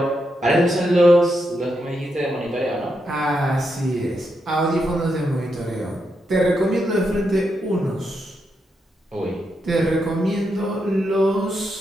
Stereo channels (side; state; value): both; normal; correlation 0.83